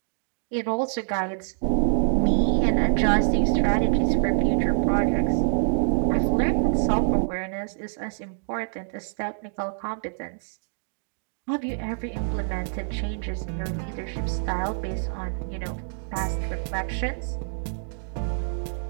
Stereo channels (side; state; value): left; silent; digital silence